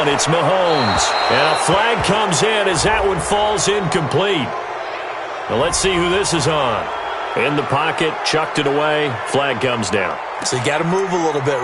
it's Mahomes. And a flag comes in as that one falls incomplete. Now let's see who this is on. In the pocket, chucked it away, flag comes down. So you got to move a little bit,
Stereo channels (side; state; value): both; identical; correlation 1.00